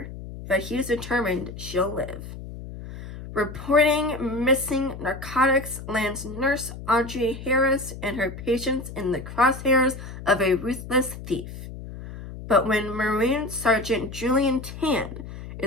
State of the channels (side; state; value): left; noise; hum, 11 dB below the sound